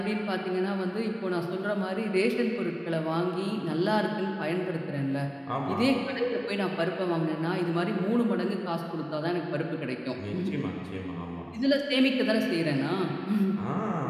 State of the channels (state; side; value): identical; both; correlation 1.00